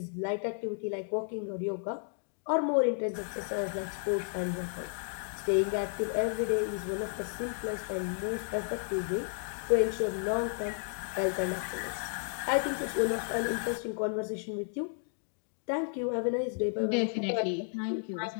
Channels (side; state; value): right; silent; 56 dB below the other